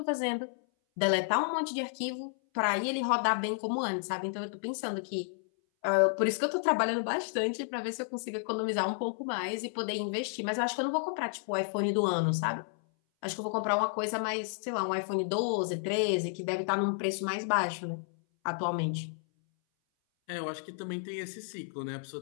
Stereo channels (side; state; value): right; silent; 57 dB below the other